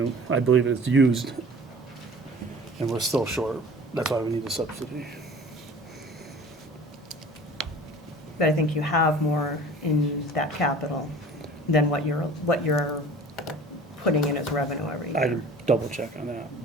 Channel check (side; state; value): both; normal; correlation 0.44